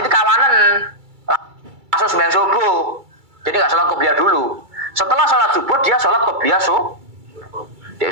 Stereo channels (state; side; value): late; left; 2.3 ms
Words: kawanan. Langsung sembahyang subuh. Jadi enggak salat qobliyah dulu. Setelah salat subuh dia salat qobliyah subuh. Dia